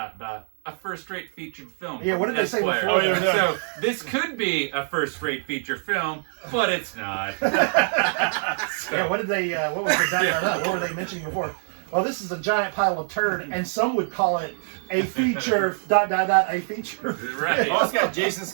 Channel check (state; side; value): silent; left; digital silence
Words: a first-rate featured film. Yeah, what from did they say Esquire. before that? So this could be a first-rate feature film, but it's not. Yeah, what did they, what was the Yeah. what were they mentioning before? Well, this is a giant pile of turd, and some would call it a feature, a feature. Right. Oh, it's got Jason